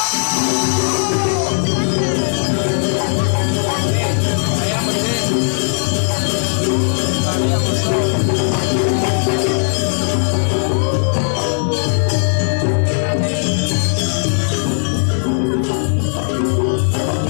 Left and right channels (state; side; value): silent; right; digital silence